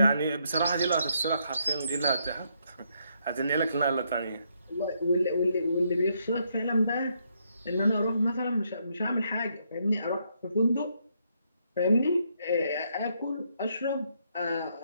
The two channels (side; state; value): both; inverted; correlation -0.75